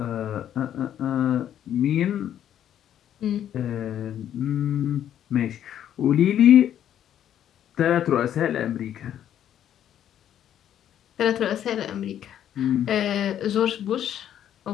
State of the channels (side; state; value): right; quieter; 10.4 dB